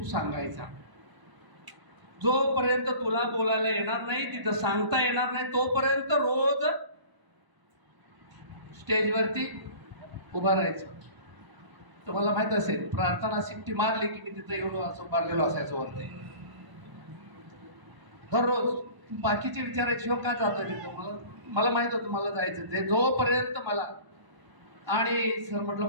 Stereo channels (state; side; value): late; left; 1.0 ms